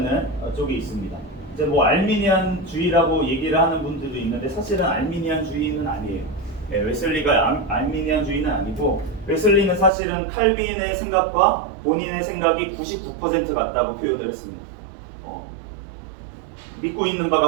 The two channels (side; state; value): left; drops out; at 9.9 s